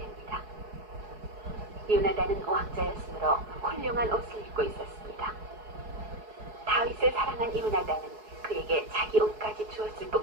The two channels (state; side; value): late; left; 4.7 ms